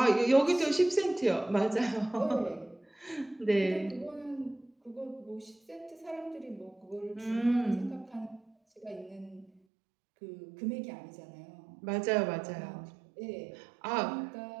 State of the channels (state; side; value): drops out; left; at 9.5 s